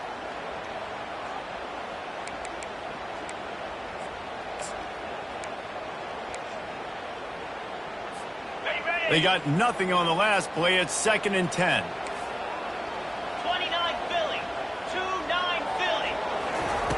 They got nothing on the last play. It's 2nd and 10. 29 Philly. 2-9 Philly.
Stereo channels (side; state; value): both; identical; correlation 1.00